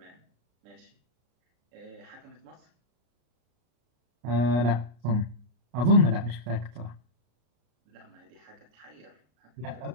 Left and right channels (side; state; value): left; late; 33 ms